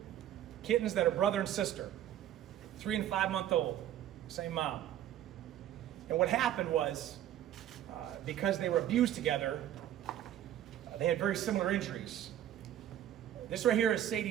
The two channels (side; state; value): left; quieter; 11.6 dB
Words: kittens that are brother and sister, 3 and 5-month-old, same mom. And what happened was, because they were abused together, they had very similar injuries. This right here is